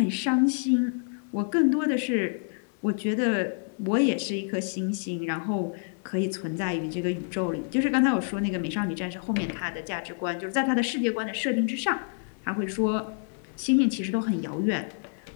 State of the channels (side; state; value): right; silent; digital silence